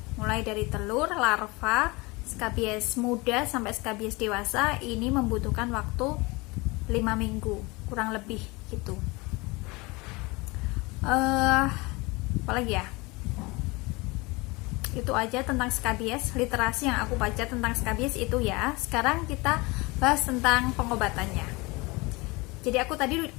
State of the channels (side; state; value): right; quieter; 24.7 dB